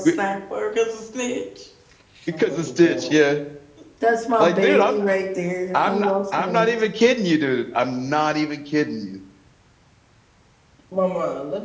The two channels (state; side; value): identical; both; correlation 1.00